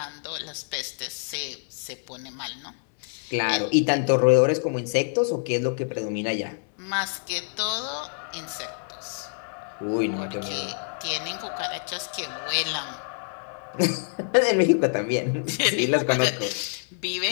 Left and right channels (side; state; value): right; silent; 60 dB below the other